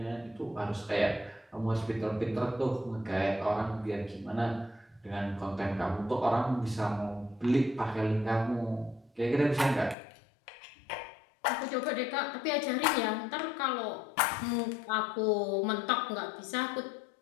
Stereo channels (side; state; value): right; drops out; at 10.0 s